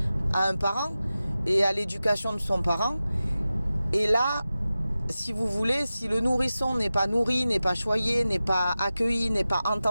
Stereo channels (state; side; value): inverted; both; correlation -0.95